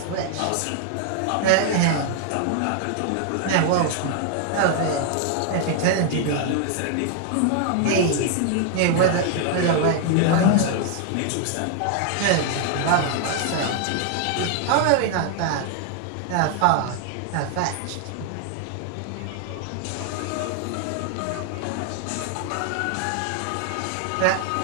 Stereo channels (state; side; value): different; both; correlation 0.00